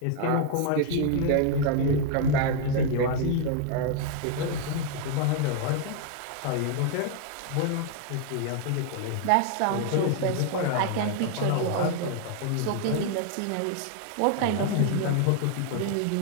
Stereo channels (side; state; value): both; different; correlation 0.00